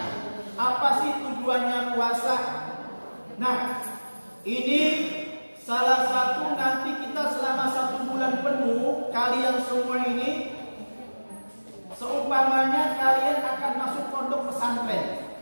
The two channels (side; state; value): both; inverted; correlation -1.00